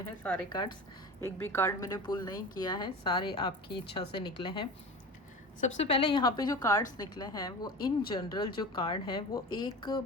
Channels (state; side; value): normal; both; correlation 0.32